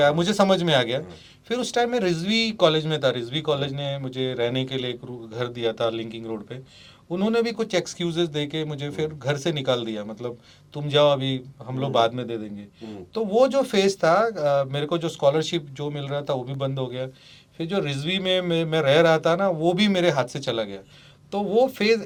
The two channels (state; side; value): identical; both; correlation 1.00